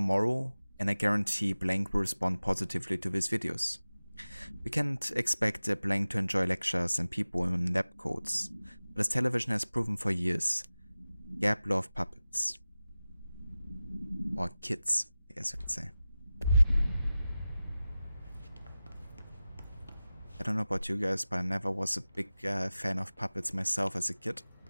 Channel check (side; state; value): both; inverted; correlation -0.96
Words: and I guarantee Blank will respond positively to these videos. We can't expect Blank to enjoy lectures and people in lab coats, but as television has proven for years, Gap love puppets. Or kids, I guess I could say. I don't know about you guys, but I never was a big fan of puppets myself as a kid.